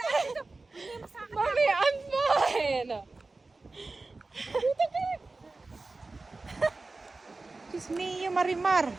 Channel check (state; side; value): quieter; left; 3.5 dB